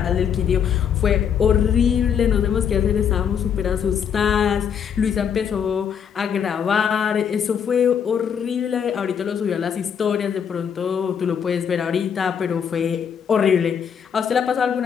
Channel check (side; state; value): right; quieter; 7.7 dB